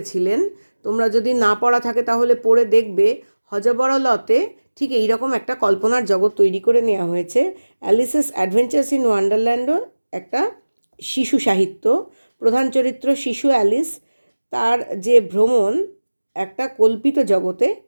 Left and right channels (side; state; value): both; inverted; correlation -1.00